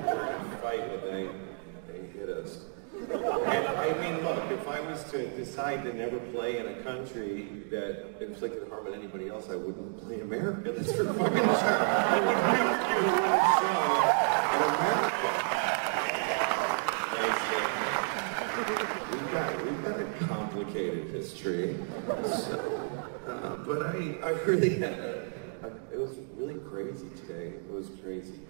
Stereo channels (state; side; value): silent; left; 56 dB below the other